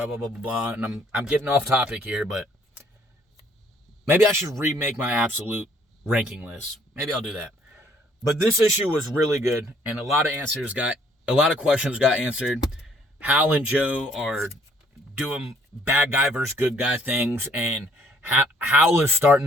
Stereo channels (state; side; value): normal; both; correlation 0.63